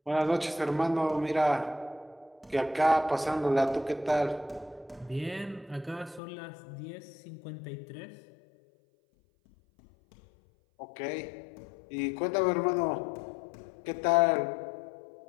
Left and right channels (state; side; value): drops out; right; at 6.2 s